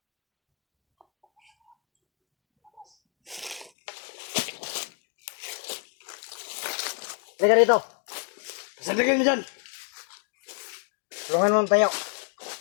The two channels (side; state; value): right; drops out; at 3.7 s